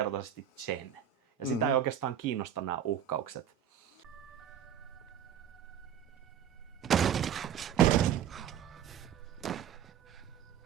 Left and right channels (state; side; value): quieter; left; 9.3 dB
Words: Jen. Ja sitä ei oikeastaan kiinnosta nämä uhkaukset.